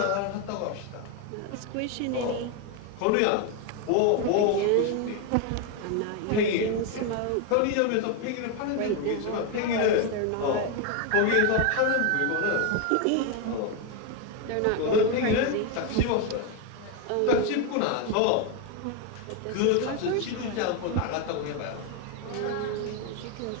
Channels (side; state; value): both; different; correlation 0.01